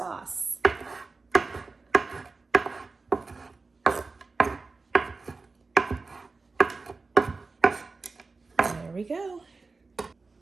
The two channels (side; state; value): left; quieter; 3.9 dB